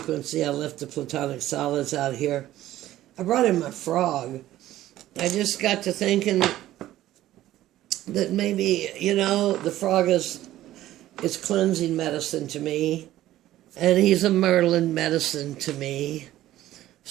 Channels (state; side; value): quieter; left; 14.3 dB